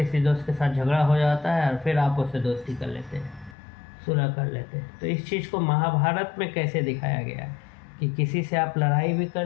दोस्त के साथ झगड़ा हो जाता है और फिर आप उससे दोस्ती कर लेते हैं, सुलह कर लेते हैं, तो इस चीज़ को महाभारत में कैसे दिखाया गया है कि किसी से आप लड़ाई भी कर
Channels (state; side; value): drops out; right; at 3.6 s